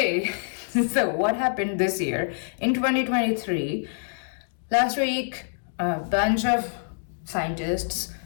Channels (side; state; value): right; silent; digital silence